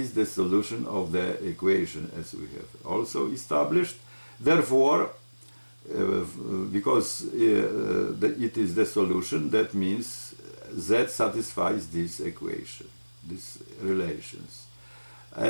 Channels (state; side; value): inverted; both; correlation -1.00